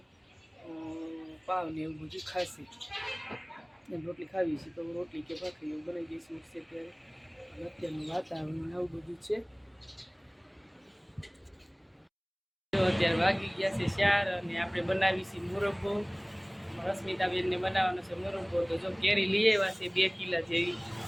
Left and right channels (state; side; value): identical; both; correlation 1.00